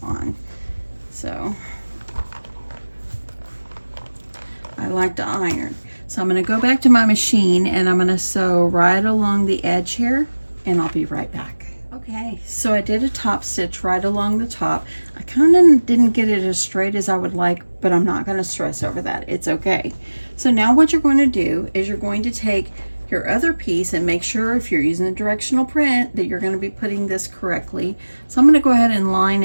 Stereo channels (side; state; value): both; inverted; correlation -1.00